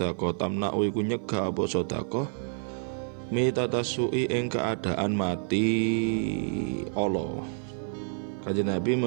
tamna'u iku nyegah apa sedekah mitatassu'i ing keadaan mati Allah. Kanjeng Nabi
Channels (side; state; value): left; silent; 55 dB below the other